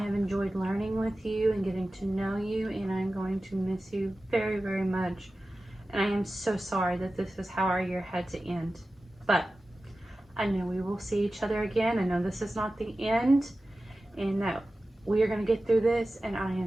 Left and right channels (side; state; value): both; normal; correlation 0.95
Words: enjoyed learning with you and getting to know you, and I'm going to miss you very, very much. And I am so sorry that this is how our year had to end. But I know we will see each other again. I know this is not the end, and that we are going to get through this. And I